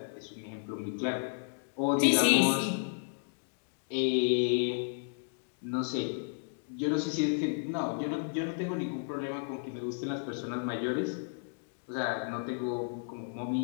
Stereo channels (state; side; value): silent; right; digital silence